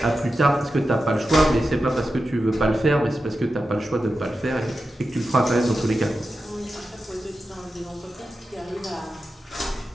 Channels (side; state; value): both; normal; correlation 0.91